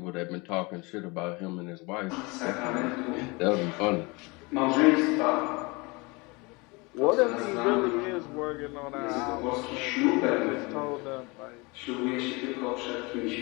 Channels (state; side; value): quieter; right; 26.5 dB